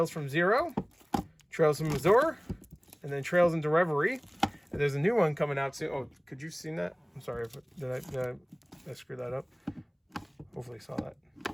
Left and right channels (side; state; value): both; identical; correlation 1.00